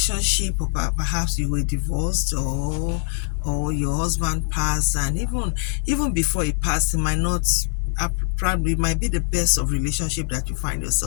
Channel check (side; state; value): right; silent; 64 dB below the other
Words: or perhaps you were divorced, or your husband passed, and even before he passed, it might not probably might be the best of relationship that you find